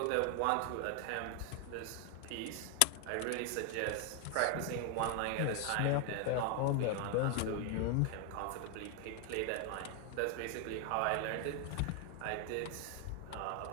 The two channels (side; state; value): both; different; correlation 0.01